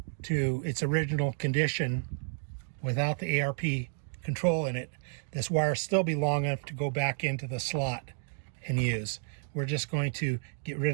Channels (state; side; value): silent; left; 57 dB below the other